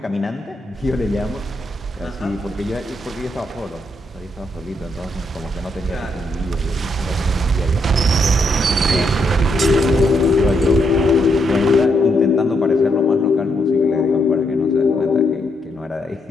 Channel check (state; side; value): normal; both; correlation 0.77